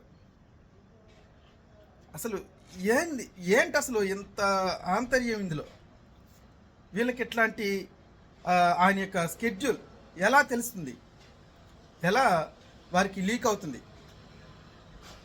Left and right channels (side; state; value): both; identical; correlation 1.00